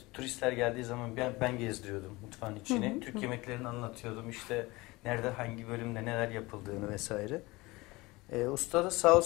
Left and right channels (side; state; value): right; quieter; 22.0 dB